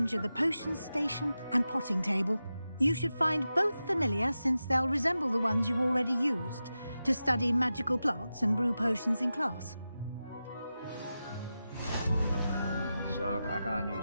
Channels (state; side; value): inverted; both; correlation -0.92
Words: the potion station and potting table. You should find both familiar, since they'll resemble the ones you've already used to study magical plants and brew potions in class. So I got a new